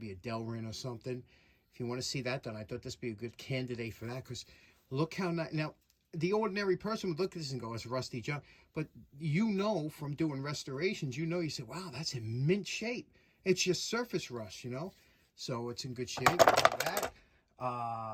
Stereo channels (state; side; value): identical; both; correlation 1.00